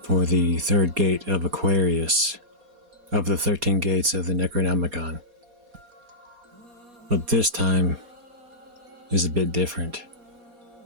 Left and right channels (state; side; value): late; left; 4.2 ms